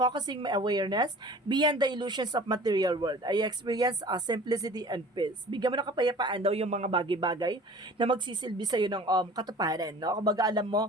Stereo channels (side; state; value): both; normal; correlation 0.44